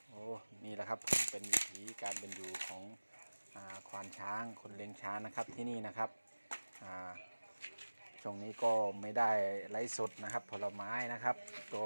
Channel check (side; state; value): both; inverted; correlation -1.00